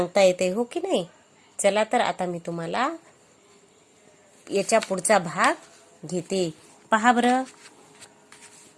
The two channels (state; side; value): identical; both; correlation 1.00